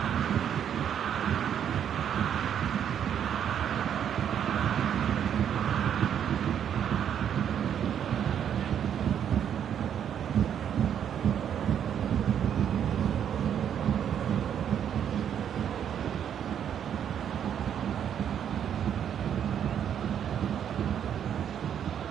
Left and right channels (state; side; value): quieter; left; 9.0 dB